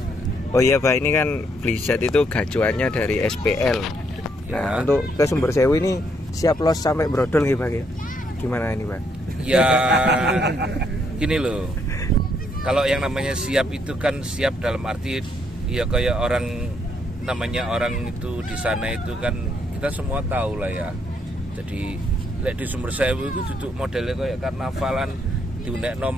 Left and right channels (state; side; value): normal; both; correlation 0.73